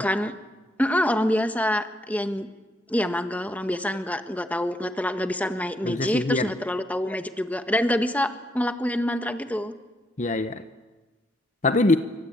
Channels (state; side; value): normal; both; correlation 0.75